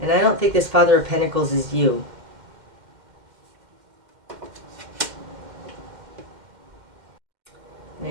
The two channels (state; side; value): late; left; 2.1 ms